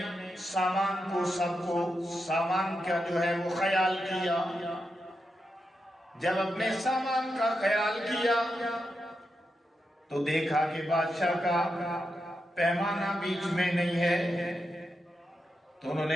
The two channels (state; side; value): normal; both; correlation 0.87